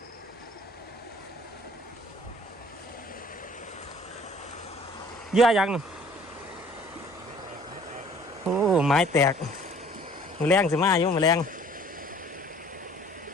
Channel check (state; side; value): normal; both; correlation 0.53